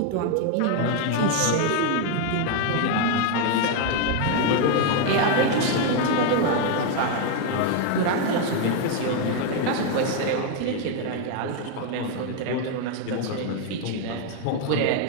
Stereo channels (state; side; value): different; both; correlation 0.01